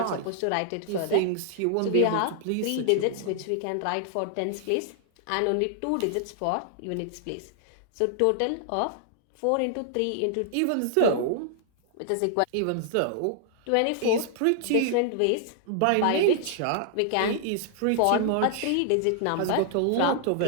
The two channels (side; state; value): both; different; correlation -0.01